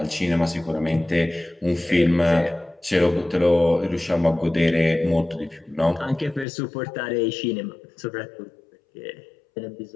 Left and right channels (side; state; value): right; drops out; at 6.5 s